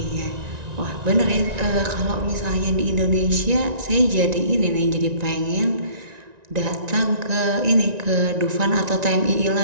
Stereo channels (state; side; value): late; left; 1.9 ms